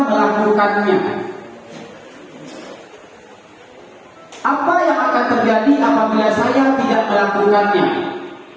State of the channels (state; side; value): identical; both; correlation 1.00